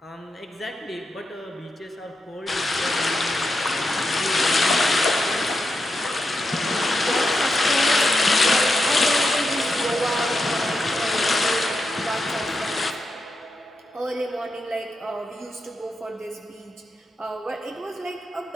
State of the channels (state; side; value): normal; both; correlation 0.87